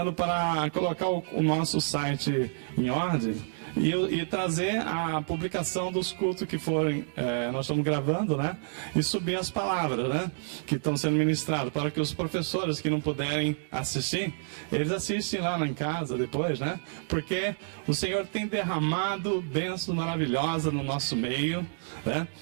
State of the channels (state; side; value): silent; left; digital silence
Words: para colocar o nosso site em ordem e trazer a publicação dos cultos que forem, nós estamos gravando, né? E subir as palavras, né? Que estão sendo ministradas, para que os professores que não puderem assistir, eles assistem lá em casa depois, né? Porque o Senhor tem derramado bênçãos maravilhosas no nosso meio, né?